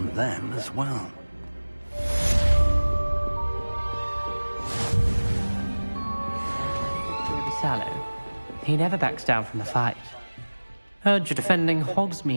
them as well. Sallow. He never backs down from a fight. Heard you're defending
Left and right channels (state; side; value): inverted; both; correlation -1.00